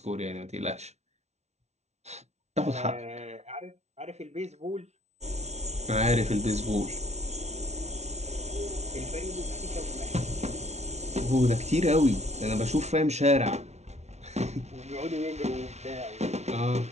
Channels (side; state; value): left; late; 0.32 ms